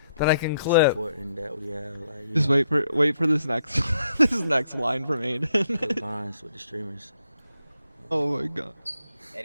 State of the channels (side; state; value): both; inverted; correlation -0.76